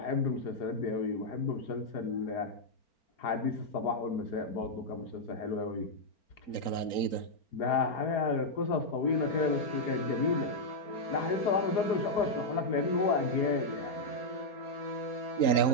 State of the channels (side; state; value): right; late; 4.4 ms